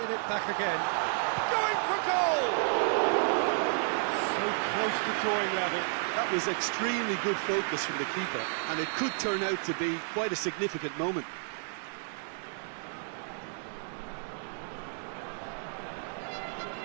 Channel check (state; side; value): silent; left; 57 dB below the other